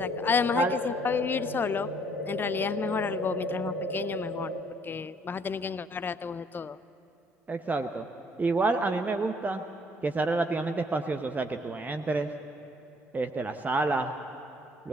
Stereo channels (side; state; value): both; normal; correlation 0.62